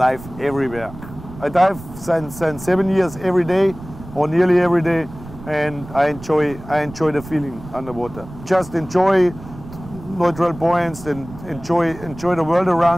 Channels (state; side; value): noise; right; rumble, 16 dB below the sound